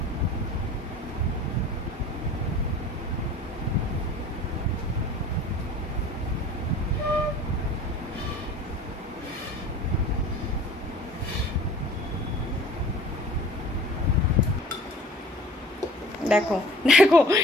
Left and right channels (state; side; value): normal; both; correlation 0.46